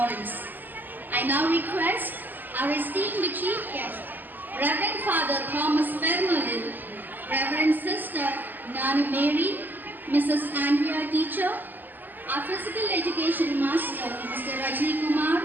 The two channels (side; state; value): left; late; 0.088 ms